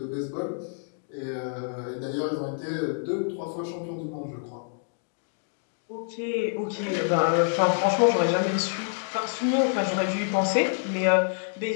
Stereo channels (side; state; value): right; silent; digital silence